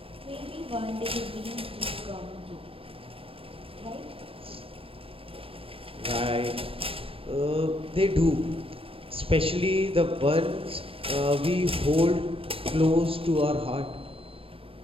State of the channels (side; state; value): left; late; 0.27 ms